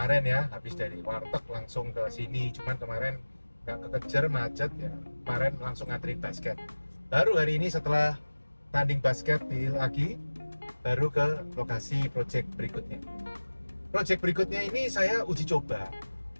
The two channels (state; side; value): inverted; both; correlation -1.00